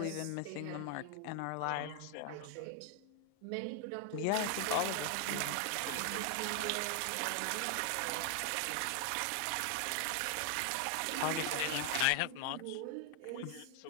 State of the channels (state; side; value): different; both; correlation 0.00